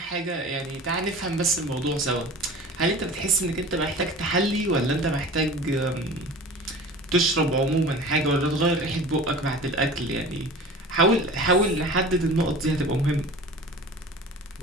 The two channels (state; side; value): normal; both; correlation 0.38